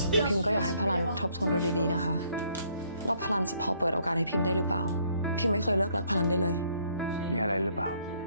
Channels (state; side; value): inverted; both; correlation -0.66